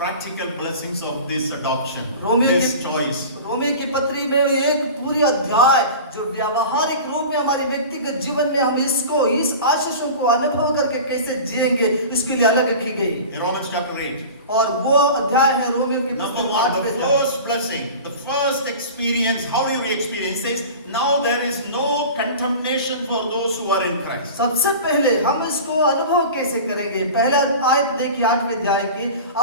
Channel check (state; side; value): inverted; both; correlation -0.36